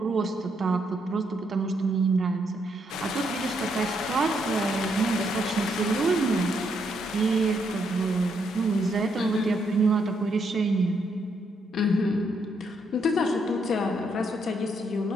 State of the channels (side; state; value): both; normal; correlation 0.76